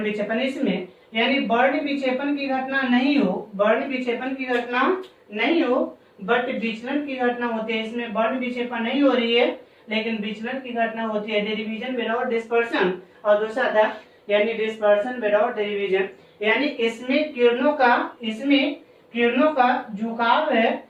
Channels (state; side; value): identical; both; correlation 1.00